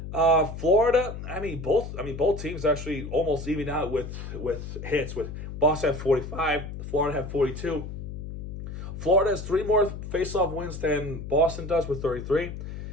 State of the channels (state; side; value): noise; left; hum, 8 dB below the sound